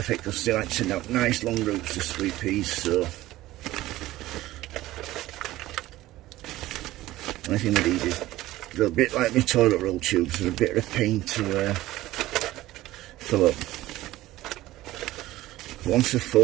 because they like to send out nice long roots to sweet peas. So only thing with these is they're a bit like my toilet roll tubes. They're a bit of a pain to fill up. Once they're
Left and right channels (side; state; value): left; quieter; 16.4 dB